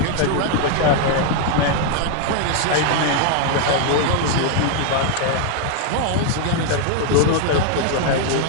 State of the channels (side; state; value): both; different; correlation 0.00